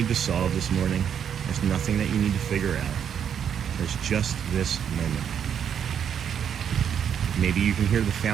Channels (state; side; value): quieter; left; 8.4 dB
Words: to solve this morning. There's nothing that you need to figure out. There's just this moment. Maybe you can hear the